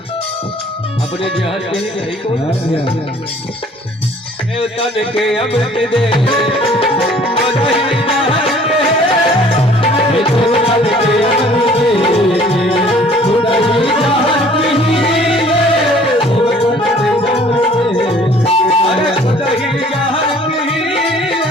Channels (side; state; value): both; normal; correlation 0.54